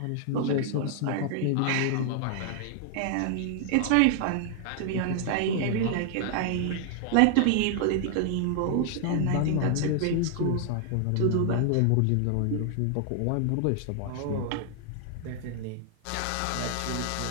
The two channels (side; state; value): both; different; correlation 0.00